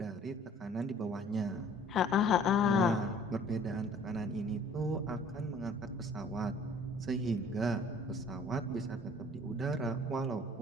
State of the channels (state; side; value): normal; both; correlation 0.53